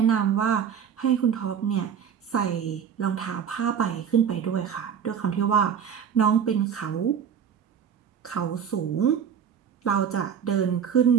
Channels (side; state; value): left; quieter; 7.9 dB